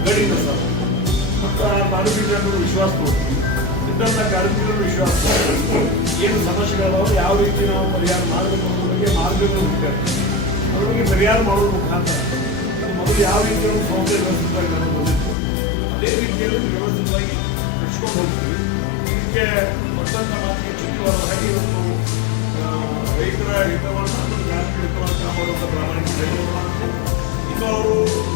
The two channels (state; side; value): drops out; right; at 15.4 s